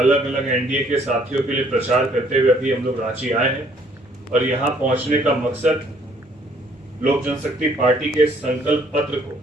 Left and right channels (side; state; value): both; normal; correlation 0.62